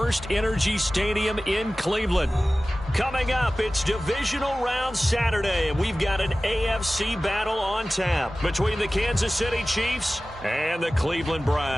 Energy Stadium in Cleveland. Coming up, it's Divisional Round Saturday, and we've got an AFC battle on tap between the Kansas City Chiefs and the Cleveland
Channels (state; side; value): normal; both; correlation 0.97